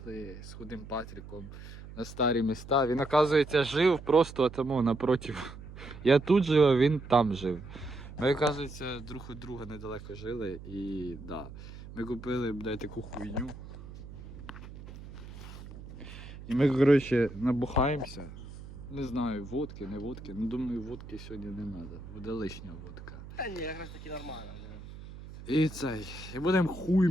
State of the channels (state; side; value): noise; right; hum, 14 dB below the sound